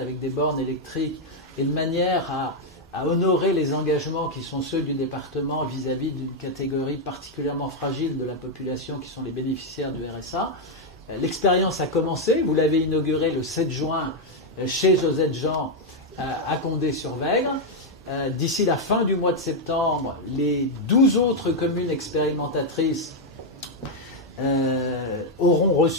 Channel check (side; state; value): both; normal; correlation 0.01